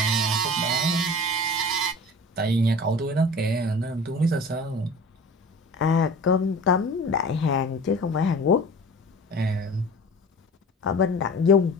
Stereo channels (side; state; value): both; normal; correlation 0.40